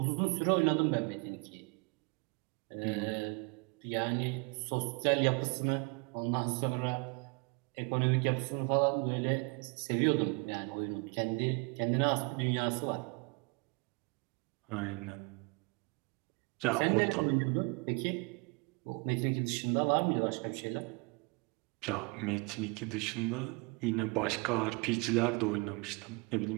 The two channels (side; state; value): left; quieter; 30.5 dB